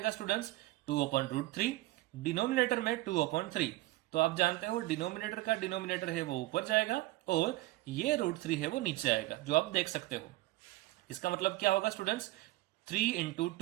स्टूडेंट्स 2/√3, डिनोमिनेटर में 2/3। तो आप जानते हो डिनोमिनेटर का डिनोमिनेटर है वो ऊपर जाएगा और ये √3 है वो नीचे आएगा, जो आप देख सकते हो। इसका मतलब क्या होगा स्टूडेंट्स 3 इंटू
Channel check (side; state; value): left; quieter; 18.4 dB